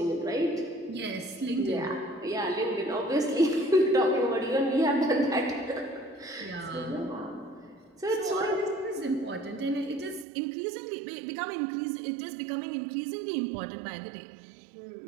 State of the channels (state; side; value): drops out; left; at 10.2 s